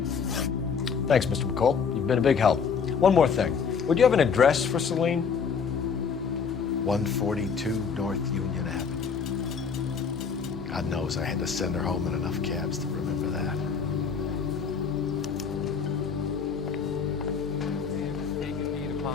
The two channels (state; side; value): quieter; right; 6.1 dB